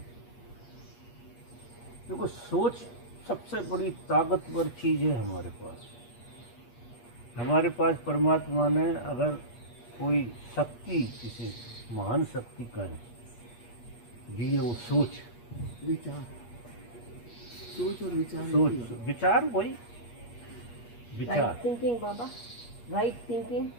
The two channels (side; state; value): right; late; 8.4 ms